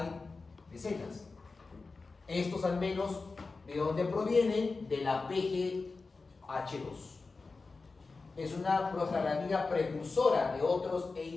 decenas. Estos al menos, ¿de dónde provienen? De la PGH2. Es una prostaglandina precursora de otros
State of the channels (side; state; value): right; quieter; 4.0 dB